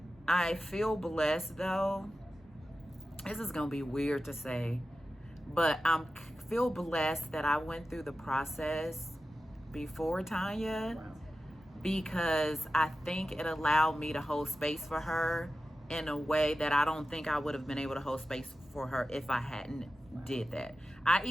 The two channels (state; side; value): normal; both; correlation 0.93